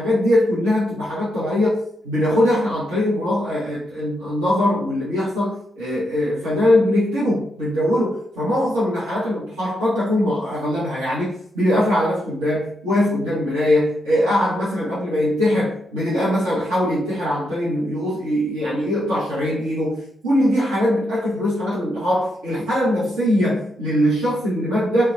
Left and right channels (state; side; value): normal; both; correlation 0.81